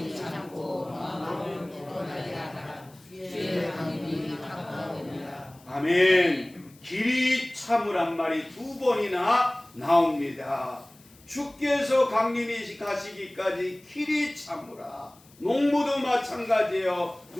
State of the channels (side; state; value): left; noise; hiss, 27 dB below the sound